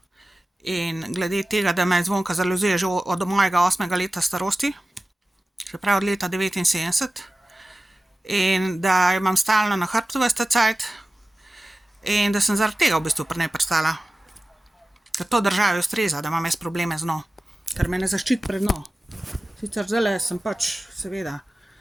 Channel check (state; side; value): normal; both; correlation 0.96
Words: in glede tega, da me Zvonka zaluzuje že od mojega 8. leta starosti, se pravi od leta 79, in da jo imam stalno na hrbtu ves ta cajt in da sem zaradi tega v bistvu pri njej pristala. Ker to državi ustreza, da imam jaz probleme z njo, ker me ne zaščiti pred njo. Sicer zdajle sem pač, seveda,